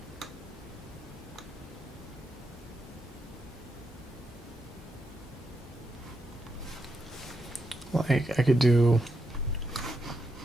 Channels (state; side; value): normal; both; correlation 0.83